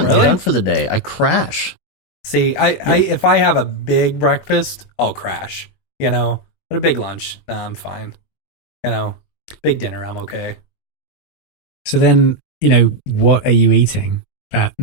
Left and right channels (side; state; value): right; late; 21 ms